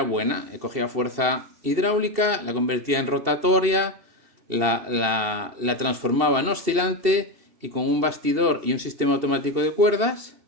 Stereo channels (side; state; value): left; late; 2.7 ms